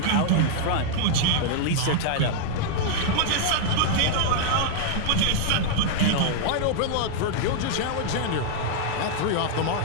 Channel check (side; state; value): both; different; correlation -0.01